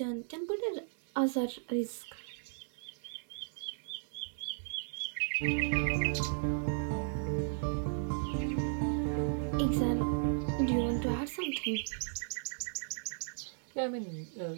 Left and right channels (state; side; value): silent; left; 54 dB below the other